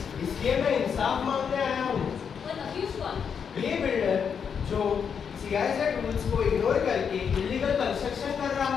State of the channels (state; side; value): quieter; right; 6.9 dB